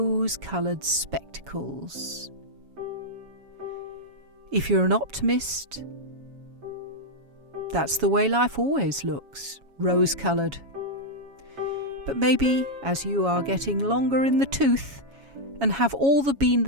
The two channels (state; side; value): late; left; 7.2 ms